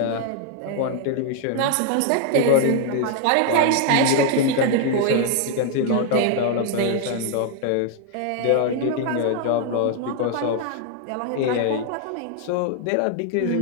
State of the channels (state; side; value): different; both; correlation 0.00